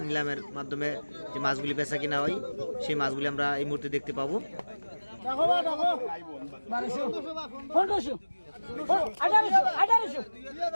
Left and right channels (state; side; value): inverted; both; correlation -1.00